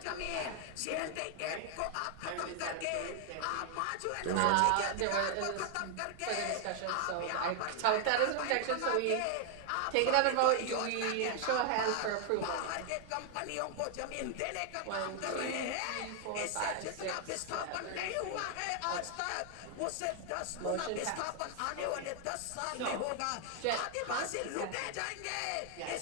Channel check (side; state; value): both; different; correlation 0.00